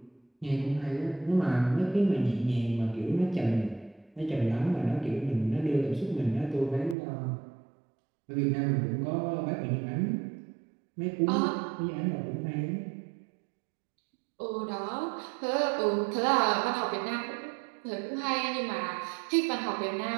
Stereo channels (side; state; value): left; drops out; at 7.0 s